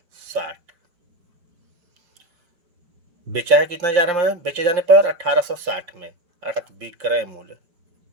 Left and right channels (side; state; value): left; late; 5.7 ms